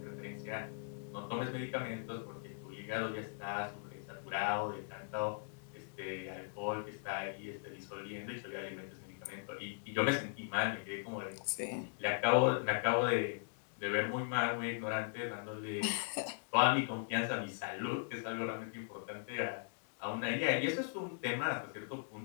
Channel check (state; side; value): silent; right; digital silence